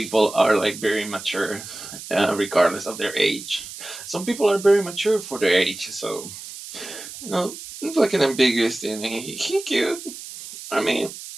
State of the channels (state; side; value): noise; right; hiss, 12 dB below the sound